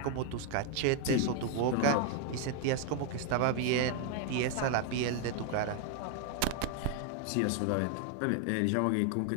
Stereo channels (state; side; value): different; both; correlation 0.00